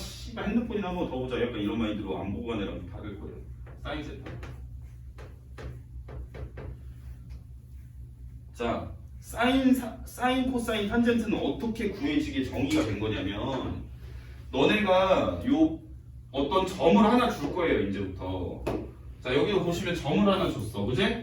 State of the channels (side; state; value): both; identical; correlation 1.00